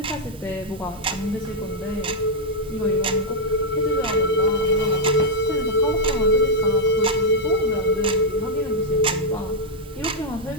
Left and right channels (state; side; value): normal; both; correlation -0.03